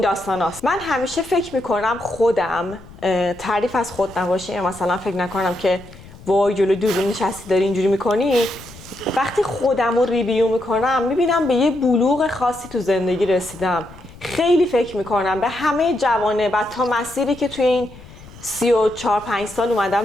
داستاناست. من همیشه فکر میکنم خودم تعریف از خود نباشه، مثلا فکر نکنم که وای جلوی دوربین نشستی داری اینجوری میکنی. وقتی خودم رو ریویو میکنم میبینم به یه بلوغ خاصی تو زندگی رسیدم. خیلی فکر میکنم به همه جوانه و تا مسیری که توی این 34-5 سال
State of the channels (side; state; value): left; noise; rumble, 20 dB below the sound